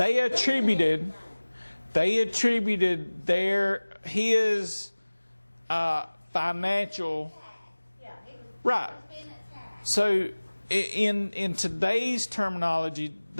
attributed his financial. Yeah, he was Right. being attacked. So in today's terminology,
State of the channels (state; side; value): inverted; both; correlation -1.00